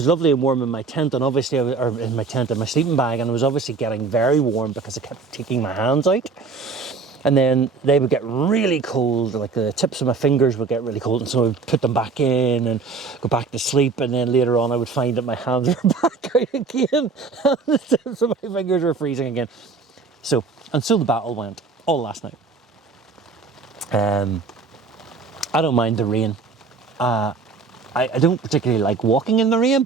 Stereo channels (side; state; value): left; quieter; 4.5 dB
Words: lovely and warm in my tent, and obviously, in my sleeping bag, and I was obviously getting very warm because I kept taking my hands out. And then they would get really cold, like the tips of my fingers would get really cold, and so I would put them back in and go back to sleep, and then later on I would find that my hands were back out again, and the tips of my fingers were freezing again. So the battle went all last night. I don't mind the rain. I don't particularly like walking in the rain,